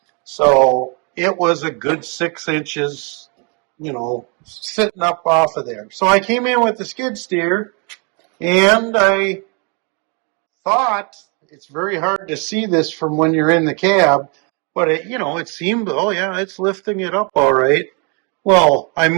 So it was a good 6 inches, sitting up off of there. So I came in with the skid steer and I thought, it's very hard to see this from when you're in the cab, but it seemed, oh yeah, it's lifting it up all right. Well, I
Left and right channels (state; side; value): quieter; left; 35.0 dB